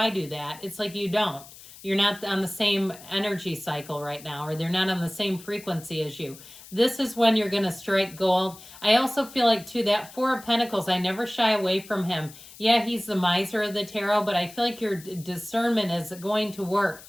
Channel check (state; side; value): noise; left; hiss, 19 dB below the sound